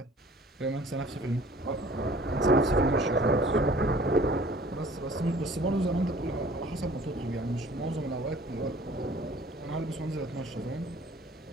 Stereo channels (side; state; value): both; normal; correlation 0.51